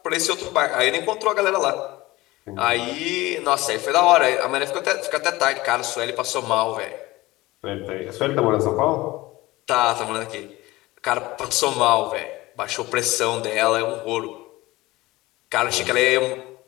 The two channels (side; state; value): right; quieter; 19.4 dB